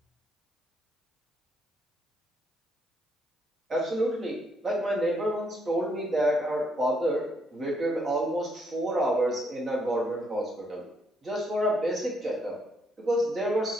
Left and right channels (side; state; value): both; normal; correlation 0.72